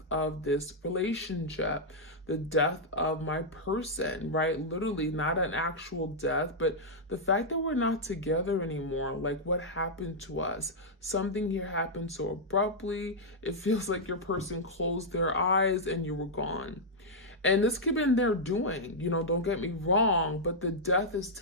of this relationship, the death of my person, right? Literally, not an actual death, but the fact that we're not together anymore. Like, what happened to us? Something here happened so abruptly. It feels like your person closed their eyes and you were gone. And this could have been their doing, don't get me wrong, but the death is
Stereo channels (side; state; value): both; normal; correlation -0.06